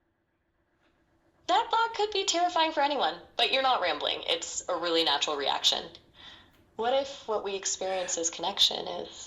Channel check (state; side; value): identical; both; correlation 1.00